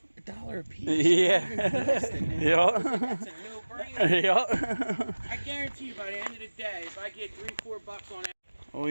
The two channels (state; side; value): inverted; both; correlation -1.00